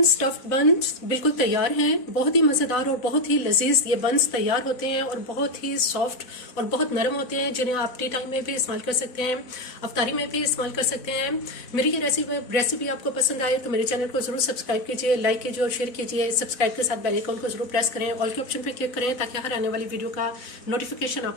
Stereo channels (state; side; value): late; right; 4.0 ms